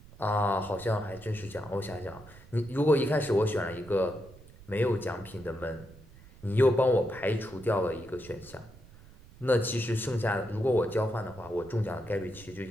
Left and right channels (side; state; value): right; noise; rumble, 21 dB below the sound